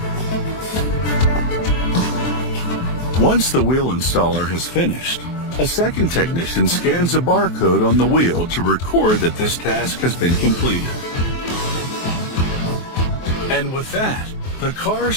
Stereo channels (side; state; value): right; late; 23 ms